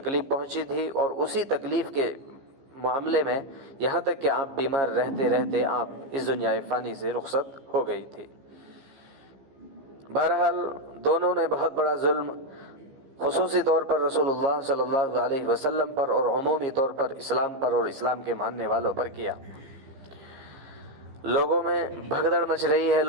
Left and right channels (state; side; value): late; left; 15 ms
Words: پہنچی تھی، اور اسی تکلیف کے معاملے میں یہاں تک کہ آپ بیمار رہتے رہتے آپ اس دنیا فانی سے رخصت ہو گئی تھی۔ بہرحال دونوں نے بہت بڑا ظلم خصوصی طور پر رسول اللہ صلی اللہ علیہ وسلم پر اور عمومی طور پر اسلام پر اور اسلام کے ماننے والوں پر کیا۔ لوگوں میں بھگدڑ مچ رہی ہے،